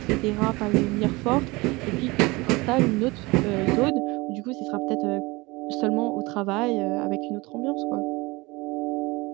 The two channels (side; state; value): left; quieter; 23.4 dB